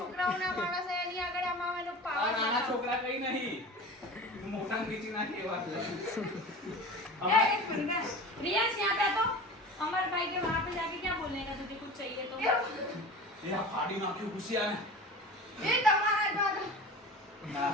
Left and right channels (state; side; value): normal; both; correlation 0.35